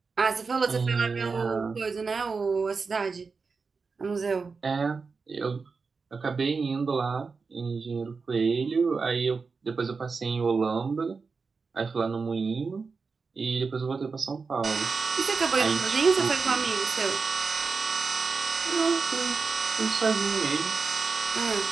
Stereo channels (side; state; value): left; quieter; 4.7 dB